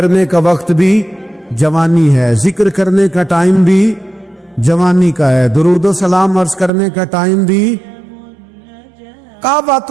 کا وقت بھی جوانی ہے، ذکر کرنے کا ٹائم بھی جوانی کا ہے، درود و سلام عرض کرنے کا ٹائم بھی، کعبۃ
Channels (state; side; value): drops out; left; at 6.7 s